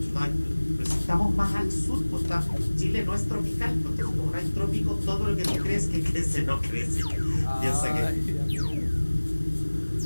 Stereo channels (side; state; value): both; inverted; correlation -1.00